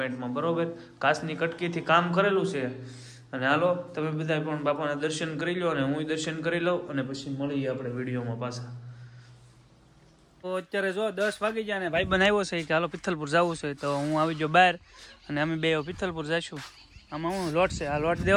બરોબર, કાચની કટકીથી કામ કરેલું છે. અને હાલો તમે બધા પણ બાપાના દર્શન કરી લો અને હું દર્શન કરી લઉં અને પછી મળીએ આપણે વિડીયોમાં પાછા. તો અત્યારે જો 10 વાગી ગયા ને ભાઈ બનાવ્યો છે કે હાલો પિથલપુર જવું છે. તો હું આવી ગયો બહાર અને અમે બે પિથલપુર જઈશું. આમાં હું લોટ છે, આ લોટ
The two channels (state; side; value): identical; both; correlation 1.00